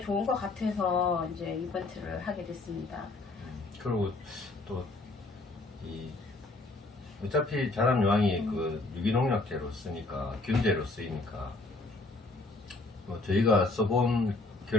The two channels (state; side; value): quieter; right; 3.2 dB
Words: 좋은 것 같아서 이제 이벤트를 하게 됐습니다. 그리고 또 어차피 자담 유황이 유기농약제로 쓰니까, 균제로 쓰이니까 저희가 써본